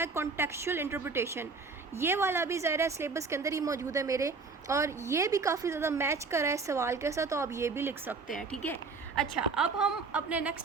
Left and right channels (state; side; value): quieter; left; 4.4 dB